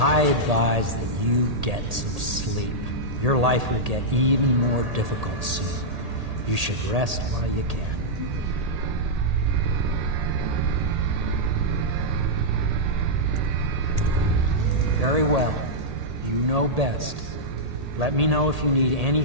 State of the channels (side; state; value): left; late; 1.8 ms